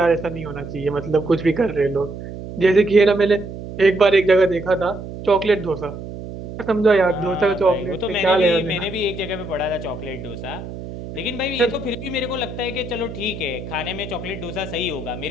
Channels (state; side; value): noise; right; hum, 10 dB below the sound